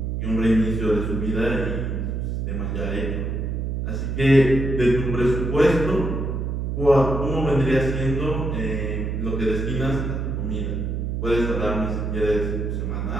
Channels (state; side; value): noise; right; hum, 2 dB below the sound